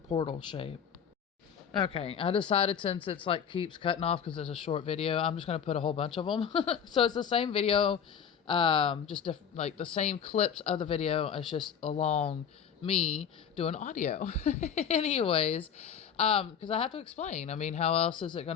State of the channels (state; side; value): quieter; right; 7.7 dB